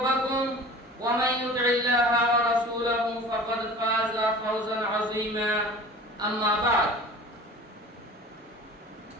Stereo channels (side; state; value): both; normal; correlation 0.41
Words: ومن يطع الله ورسوله فقد فاز فوزا عظيما أما بعد